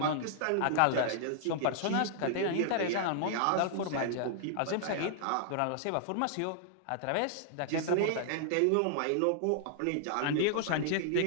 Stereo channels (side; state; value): both; different; correlation -0.01